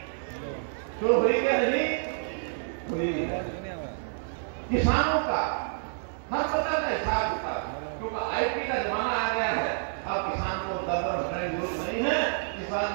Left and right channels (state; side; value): silent; left; 58 dB below the other